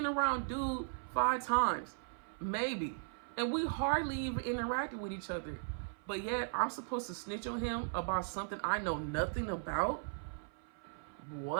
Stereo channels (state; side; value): silent; left; 53 dB below the other